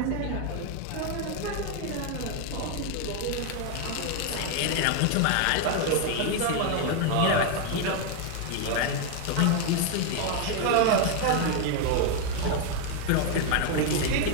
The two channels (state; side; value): different; both; correlation 0.01